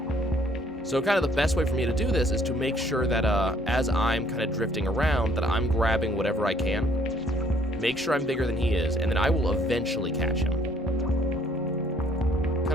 So kind of the best way for me to do this is to make sure that as I'm kind of drifting around, that I'm grabbing whatever I can, make sure I'm bigger than he is, and then I will eventually catch him.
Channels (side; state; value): both; normal; correlation 0.62